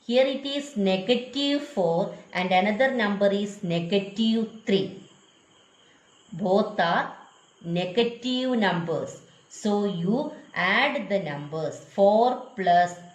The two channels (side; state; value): both; identical; correlation 1.00